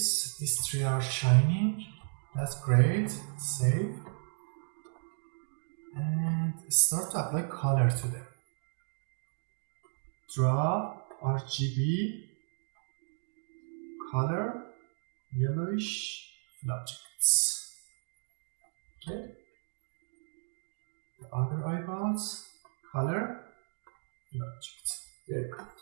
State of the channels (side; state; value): left; silent; 55 dB below the other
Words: These three are shining. That's great. Save. And start to apply color to them. Draw RGB color yellowish fill objects. Okay. The other eyeballs color fill objects. There you go.